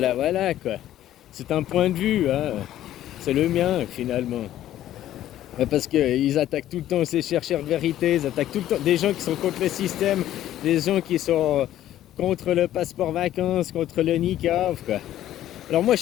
voilà, quoi. C'est un point de vue, hein. C'est le mien, finalement. Parce qu'ils attaquent tout le temps ces chercheurs de vérité, ils attaquent tout le temps des gens qui sont contre le système, des gens qui sont contre le passeport vacances, contre le niqab, quoi. Alors moi, je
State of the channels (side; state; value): right; quieter; 12.7 dB